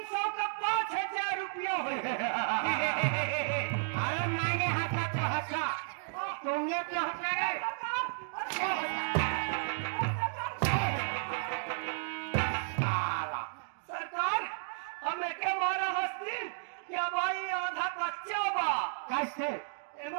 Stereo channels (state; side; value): silent; left; digital silence